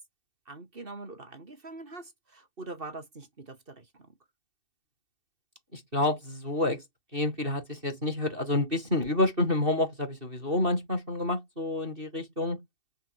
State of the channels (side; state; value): left; late; 2.7 ms